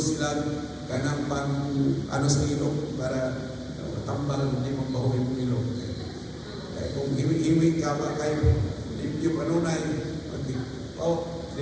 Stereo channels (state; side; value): identical; both; correlation 1.00